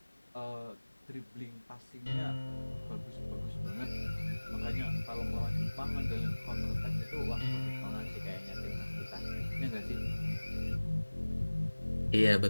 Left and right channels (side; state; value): both; inverted; correlation -1.00